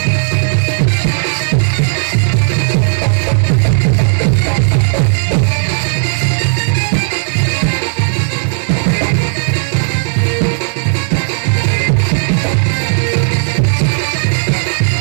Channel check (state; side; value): silent; left; 72 dB below the other